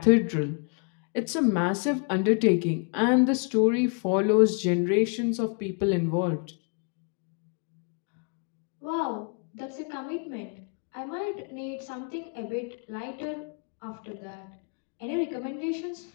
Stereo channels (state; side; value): quieter; right; 39.5 dB